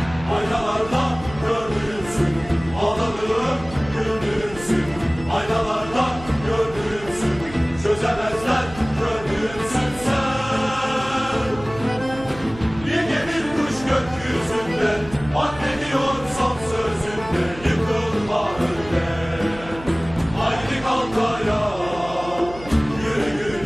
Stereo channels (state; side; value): noise; right; hum, 16 dB below the sound